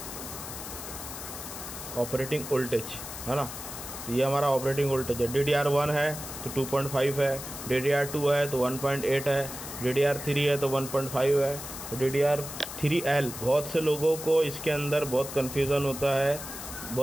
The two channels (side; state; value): left; noise; hiss, 9 dB below the sound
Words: ऑपरेटिंग वोल्टेज, है ना। तो ये हमारा ऑपरेटिंग वोल्टेज है। DDR1 है तो 2.5 है, DDR2 है तो 1.8 है, DDR3 है तो 1.5 है, DDR3L। बहुत से लोगों को इसके अंदर बहुत कन्फ्यूज़न होता है,